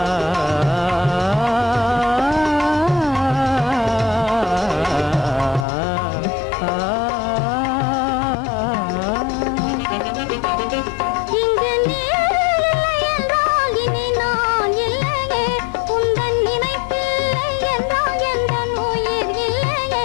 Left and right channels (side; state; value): right; drops out; at 5.7 s